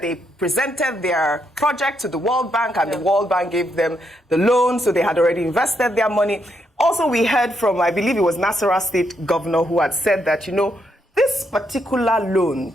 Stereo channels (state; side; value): normal; both; correlation 0.78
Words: they presented their project to the World Bank, and the World Bank gave them the loan, so they had already invested their money. Also, we heard from, I believe it was Nasarawa State Governor, who had said that, this particular loan